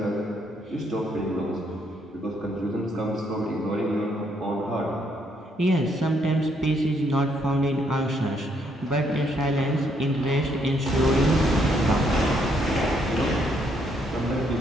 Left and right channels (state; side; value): normal; both; correlation 0.72